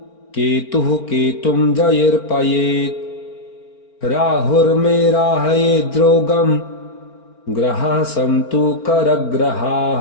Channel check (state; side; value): late; right; 4.4 ms